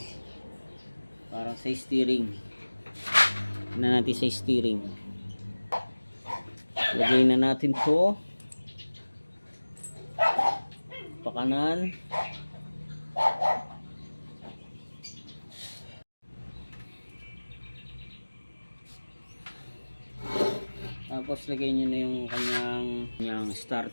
parang sa steering. Na natin sa steering. Lagay na natin to pakanan. Tapos lagay nyo na yung kanyang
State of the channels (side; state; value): both; inverted; correlation -1.00